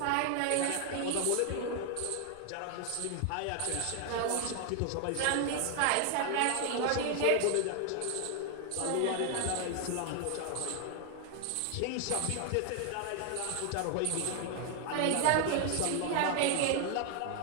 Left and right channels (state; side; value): different; both; correlation 0.00